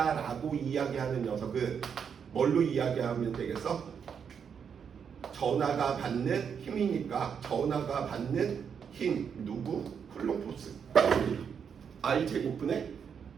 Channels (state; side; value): quieter; left; 7.1 dB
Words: 이야기하는 녀석은 뭘로 이야기하면 되겠어? 전하가 받는 힘이니까 전하가 받는 힘 누구? 쿨롱 포스 I 제곱분의